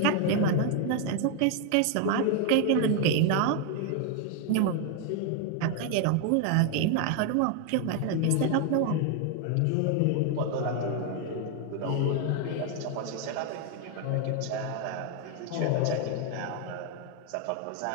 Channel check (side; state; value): both; different; correlation 0.01